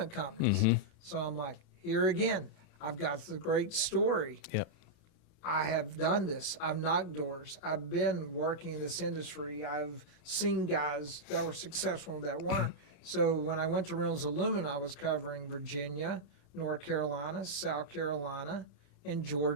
companies. Mm-hmm. So I'm like, here again, I've got the great story. Yep. I have done this. I've knocked doors. I've been working in this industry. I've seen guys that were successful that weren't. So when I went to Reynolds Aluminum, I was covering Virginia, North Carolina, South Carolina, and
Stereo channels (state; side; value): normal; both; correlation -0.06